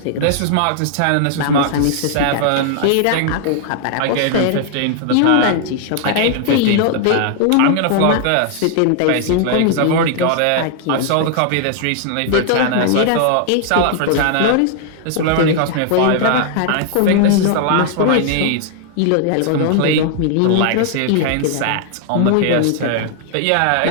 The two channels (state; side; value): different; both; correlation 0.00